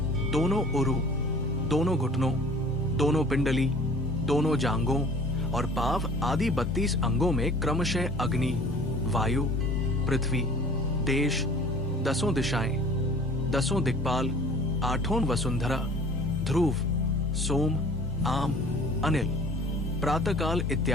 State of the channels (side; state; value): both; normal; correlation 0.47